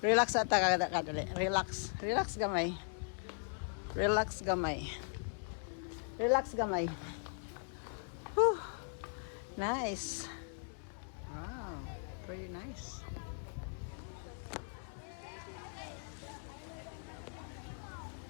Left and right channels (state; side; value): silent; right; 52 dB below the other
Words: ata kadali. Relax gamay. Relax gamay. Whew. Nice. Wow, very nice.